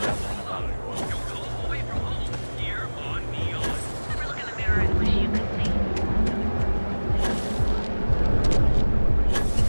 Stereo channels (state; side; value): inverted; both; correlation -1.00